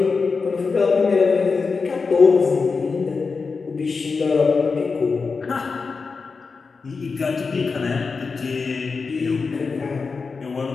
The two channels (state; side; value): quieter; right; 4.7 dB